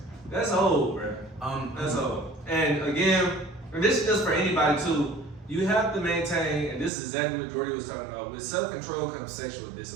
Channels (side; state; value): left; drops out; at 6.9 s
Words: That's old, bro. That's old. And again, and this is just for anybody too. You have to maintain, and this is exactly what Jordy was talking about. With self-control comes sexual